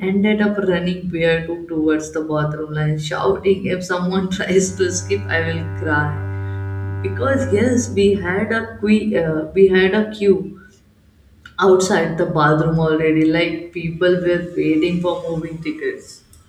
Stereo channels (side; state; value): both; identical; correlation 1.00